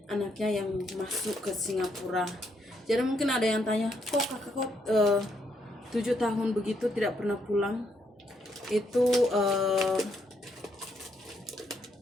anaknya yang masuk ke Singapura. Jadi mungkin ada yang tanya, kok kakak 7 tahun begitu tidak pernah pulang? Itu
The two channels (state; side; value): normal; both; correlation 0.75